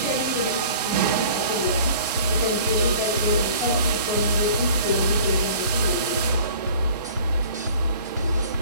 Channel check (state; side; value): inverted; both; correlation -0.48